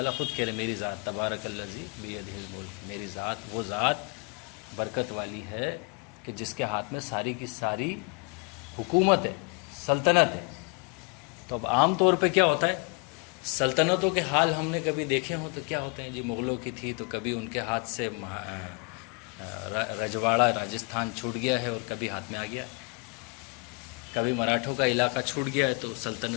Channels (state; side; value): quieter; right; 32.8 dB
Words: خود کہہ رہے میری ذات تبارک الذی بیدہ الملک، میری ذات وہ ذات برکت والی ہے کہ جس کے ہاتھ میں ساری کی ساری حکومت ہے، سلطنت ہے۔ تو اب عام طور پہ کیا ہوتا ہے، سلطنتوں کے حال ہم نے کبھی دیکھے ہوں تو کیا ہوتے ہیں جی، مغلوں کی تھی تو کبھی ان کے ہاتھ سے رجواڑہ راجستھان چھوٹ گیا ہے اور کبھی ہاتھ میں آ گیا ہے، کبھی مراٹھوں کا علاقہ چھوٹ گیا ہے تو